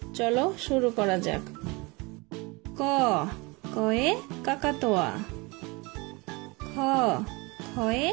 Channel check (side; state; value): left; quieter; 26.1 dB